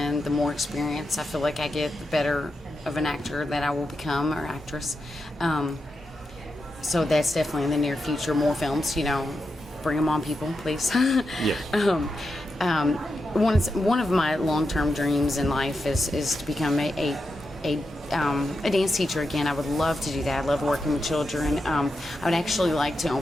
The more experience I feel like I get, the better of an actor that I will become, or actress. So that's definitely in the near future. More films, bring them on, people, please. Yeah. One of my long-term dreams in life is to become a a dance teacher again. I would love to do that. I love working with children. I would actually like to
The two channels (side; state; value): both; normal; correlation 0.88